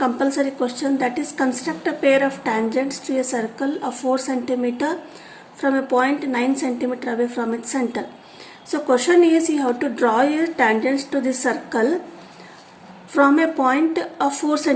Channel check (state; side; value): identical; both; correlation 1.00